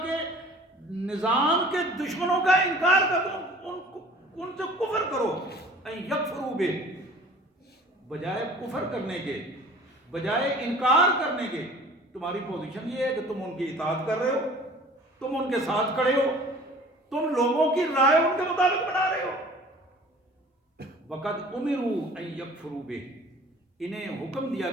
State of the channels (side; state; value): both; normal; correlation 0.47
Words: کے نظام کے دشمنوں کا انکار کر دو، ان سے کفر کرو۔ ان یکفروا بہ، بجائے کفر کرنے کے، بجائے انکار کرنے کے، تمہاری پوزیشن یہ ہے کہ تم ان کی اطاعت کر رہے ہو، تم ان کے ساتھ کھڑے ہو، تم لوگوں کی رائے ان کے مطابق بنا رہے ہو۔ وقد امروا ان یکفروا بہ، انہیں حکم دیا